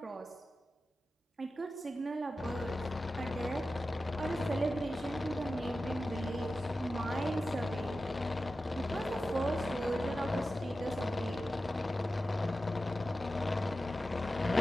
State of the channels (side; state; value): both; normal; correlation 0.93